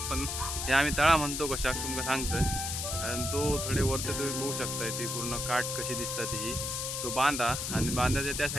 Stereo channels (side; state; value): left; noise; hiss, 3 dB below the sound